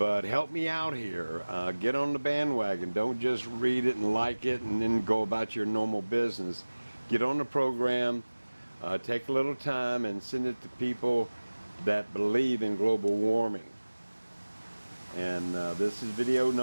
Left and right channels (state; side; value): inverted; both; correlation -1.00